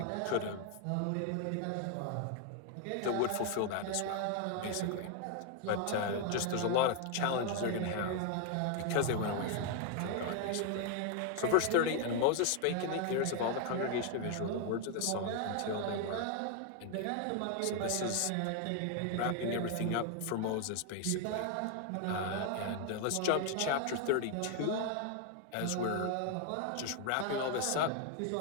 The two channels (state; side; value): different; both; correlation 0.00